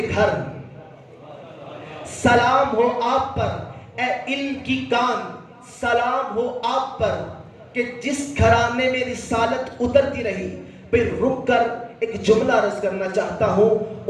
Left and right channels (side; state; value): both; identical; correlation 1.00